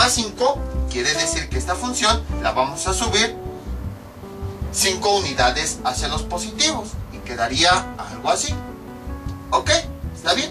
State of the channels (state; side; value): identical; both; correlation 1.00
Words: 5, quiere decir que esta función la vamos a subir 5 unidades hacia los positivos, y quedaría algo así. ¿Ok? ¿Está